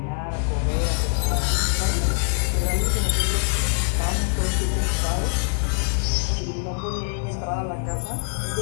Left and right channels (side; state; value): right; silent; 57 dB below the other